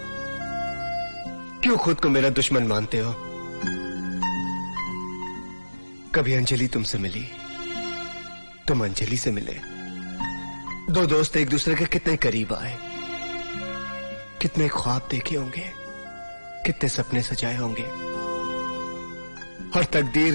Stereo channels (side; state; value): both; inverted; correlation -1.00